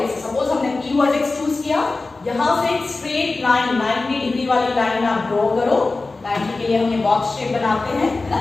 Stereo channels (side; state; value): right; quieter; 3.5 dB